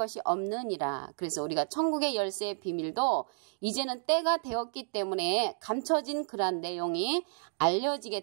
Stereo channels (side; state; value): left; silent; digital silence